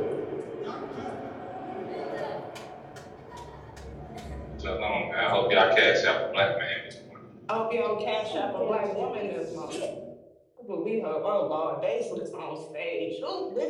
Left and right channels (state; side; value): identical; both; correlation 1.00